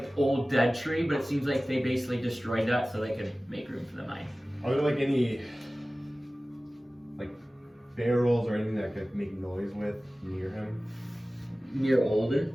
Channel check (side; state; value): both; normal; correlation 0.97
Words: old dead tree, but it seems like they basically destroyed that so they could make room for the mine. Are there like any like barrels or anything that could make noise with near him? Near